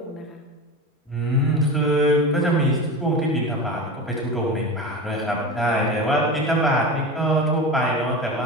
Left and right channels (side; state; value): both; normal; correlation 0.28